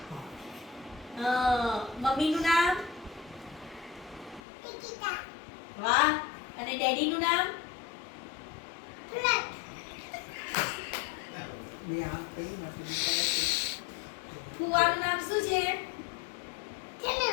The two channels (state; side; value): drops out; right; at 4.4 s